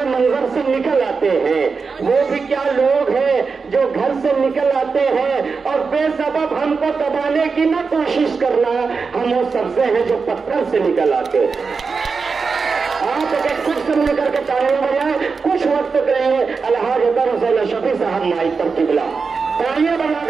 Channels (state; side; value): quieter; left; 4.9 dB